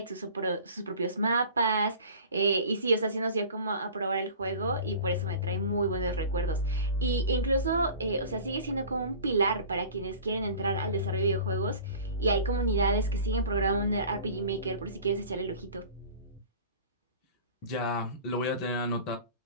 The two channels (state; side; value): inverted; both; correlation -0.41